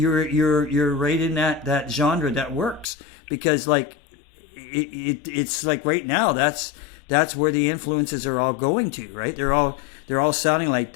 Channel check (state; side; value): drops out; right; at 2.9 s